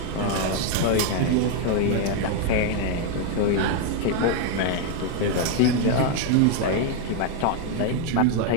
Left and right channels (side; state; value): both; different; correlation 0.01